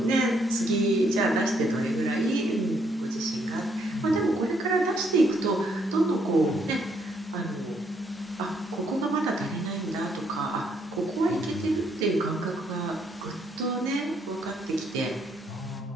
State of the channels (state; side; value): normal; both; correlation 0.71